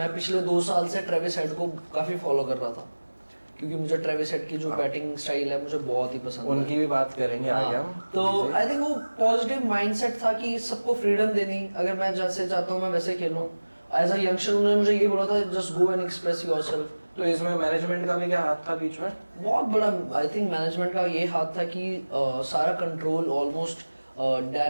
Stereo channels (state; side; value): inverted; both; correlation -1.00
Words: पिछले 2 साल से ट्रेविस हेड को काफ़ी फॉलो कर रहा था, क्योंकि मुझे ट्रेविस हेड की जो बैटिंग स्टाइल है मुझे बहुत ही पसंद है। उनकी भी बात करेंगे आगे हम। तो आई थिंक वो पॉजिटिव माइंडसेट था कि सबको फ्रीडम देनी, अगर मैं जैसे चाहता हूँ मैं वैसे खेलूँ। एज अ यंगस्टर उन्होंने मुझे ये बोला था, just go and express yourself. तो इसमें मैनेजमेंट का भी क्या हाथ था बीच में? बहुत बड़ा आई थिंक मैनेजमेंट का ये हाथ था कि सारा control almost